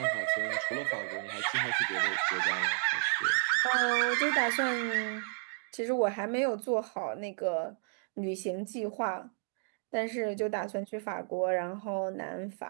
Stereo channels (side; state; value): left; silent; digital silence